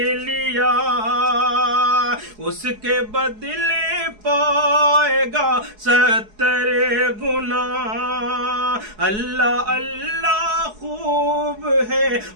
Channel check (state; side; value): late; left; 4.7 ms